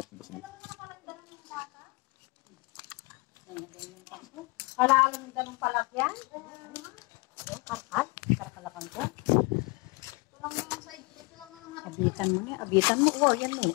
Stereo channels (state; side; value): quieter; right; 27.4 dB